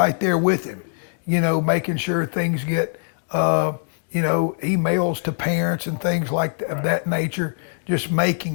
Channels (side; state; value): right; silent; digital silence